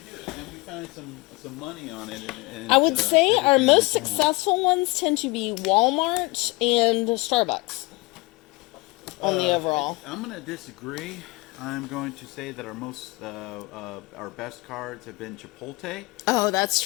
do, and we find some money on it. And I would say our most we can. successful ones tend to be Walmart and Starbucks on the overall. I'm going to disagree. I'm going to say that our best cards have been Chipotle. Oh, that's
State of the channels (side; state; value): right; quieter; 24.6 dB